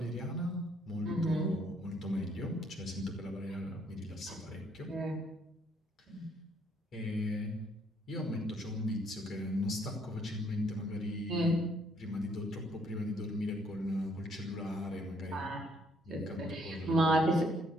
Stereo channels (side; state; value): both; normal; correlation 0.67